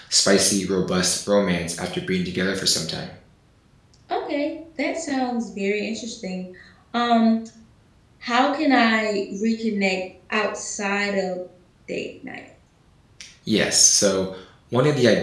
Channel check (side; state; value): both; identical; correlation 1.00